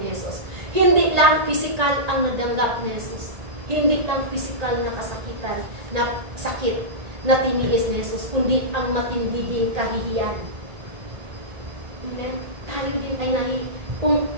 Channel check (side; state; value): left; late; 1.8 ms